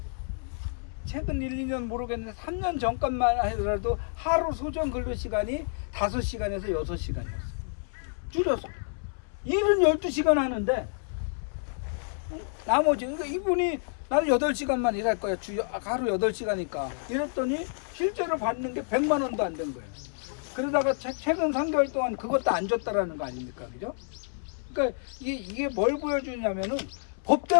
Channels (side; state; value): right; silent; 59 dB below the other